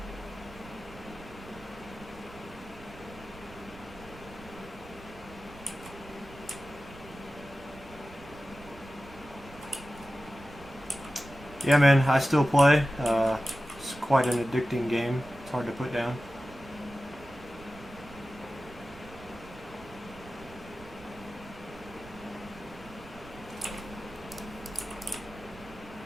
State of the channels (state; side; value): noise; right; rumble, 19 dB below the sound